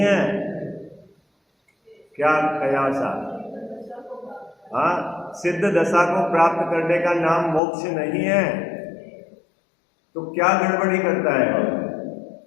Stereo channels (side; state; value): right; drops out; at 7.6 s